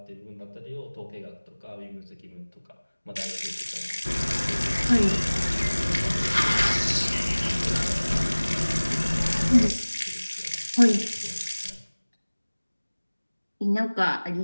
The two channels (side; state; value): both; inverted; correlation -1.00